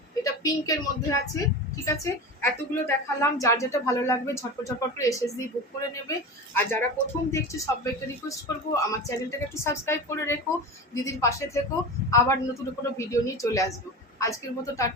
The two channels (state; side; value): normal; both; correlation 0.28